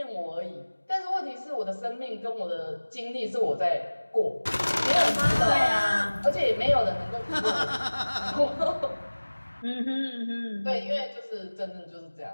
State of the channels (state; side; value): inverted; both; correlation -1.00